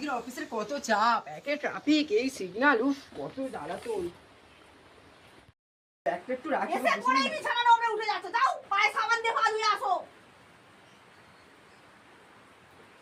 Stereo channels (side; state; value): both; identical; correlation 1.00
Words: অফিসের কত চাপ, একে ট্রাফিক, এই সিগন্যাল, উফ কত জ্বালাতন। ব্যাগটা একটু রাখি। এসে পড়েই বিছানা নোংরা উঠে যাচ্ছে, যাও পায়ে সাবান দিয়ে পা ধুয়ে আসো।